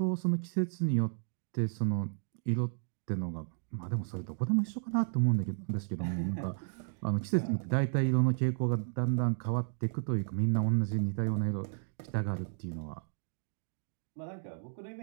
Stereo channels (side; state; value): left; silent; digital silence